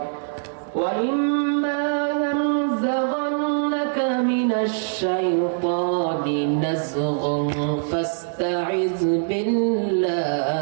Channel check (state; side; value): silent; left; digital silence